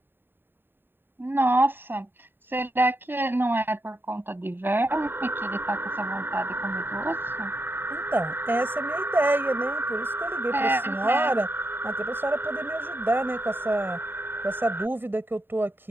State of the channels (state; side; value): late; left; 0.098 ms